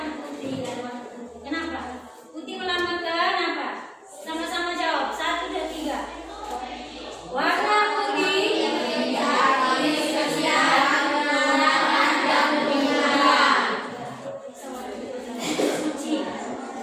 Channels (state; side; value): identical; both; correlation 1.00